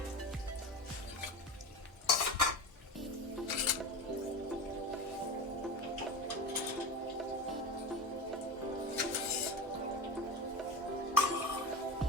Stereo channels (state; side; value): normal; both; correlation 0.27